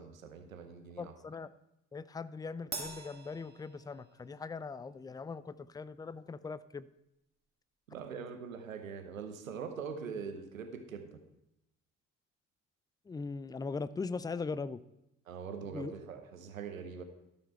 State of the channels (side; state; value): both; normal; correlation 0.57